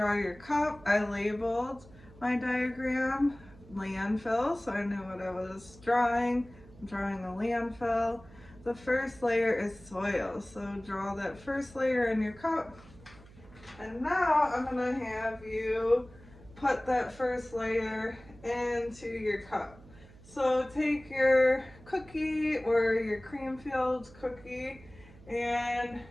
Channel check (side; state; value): right; noise; hum, 22 dB below the sound